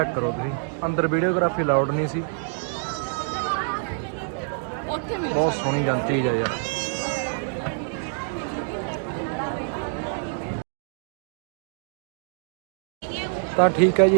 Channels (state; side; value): silent; left; 61 dB below the other